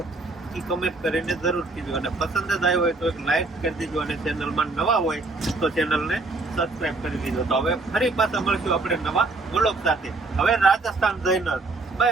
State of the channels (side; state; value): left; quieter; 3.3 dB